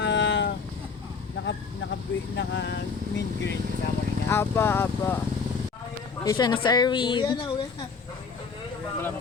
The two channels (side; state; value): right; quieter; 5.2 dB